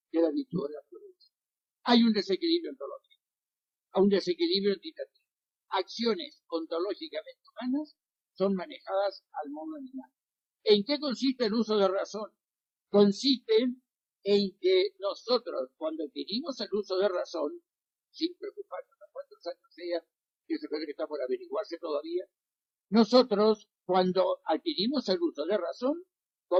que es la virtud de la prudencia. Hay un desequilibrio ontológico, un desequilibrio entitativo. Acciones ontológicamente humanas son manejadas al modo animal. ¿En qué consiste el uso de razón? Consiste en que nosotros, cuando adquirimos el uso de razón, sin preocuparnos a cuántos años sea, que se puede que está por averiguarse todavía, nosotros, cuando adquirimos el uso de razón,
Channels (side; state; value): both; identical; correlation 1.00